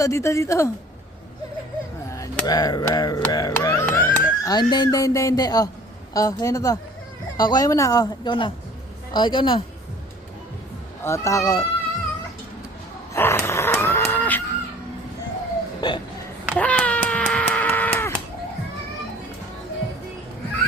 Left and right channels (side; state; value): both; normal; correlation 0.49